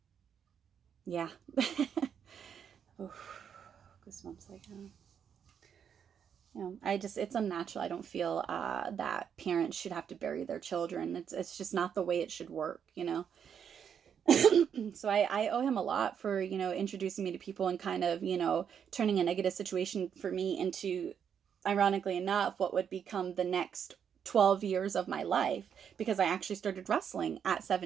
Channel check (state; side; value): quieter; left; 7.9 dB